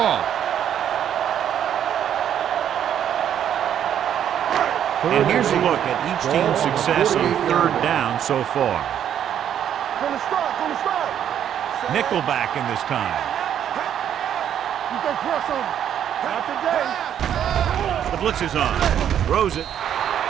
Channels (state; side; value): quieter; left; 9.7 dB